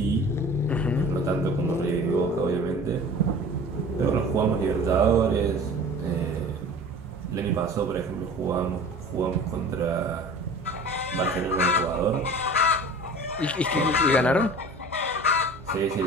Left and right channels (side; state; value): both; normal; correlation 0.41